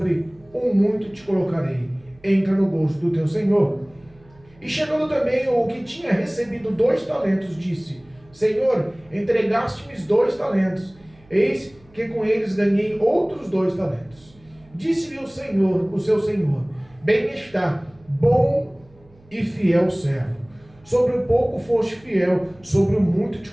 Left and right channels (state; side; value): noise; right; hum, 28 dB below the sound